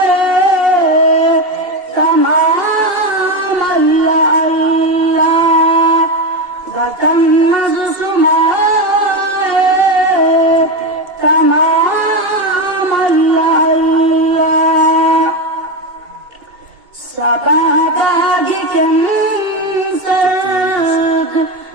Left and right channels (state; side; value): late; left; 2.5 ms